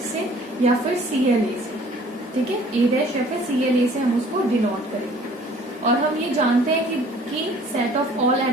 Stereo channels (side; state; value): both; normal; correlation 0.53